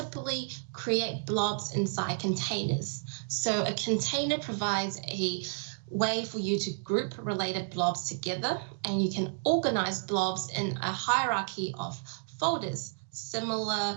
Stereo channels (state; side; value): silent; left; digital silence